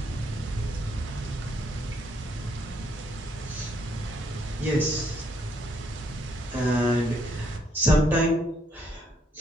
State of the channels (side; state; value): both; normal; correlation 0.71